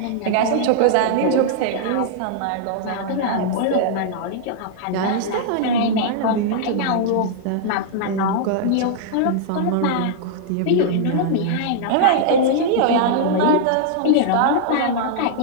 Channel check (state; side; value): different; both; correlation -0.01